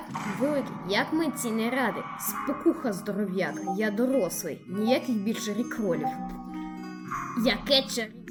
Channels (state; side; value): identical; both; correlation 1.00